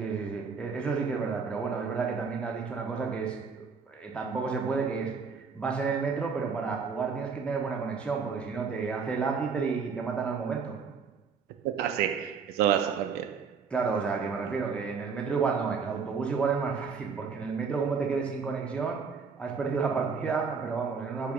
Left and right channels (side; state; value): left; quieter; 5.5 dB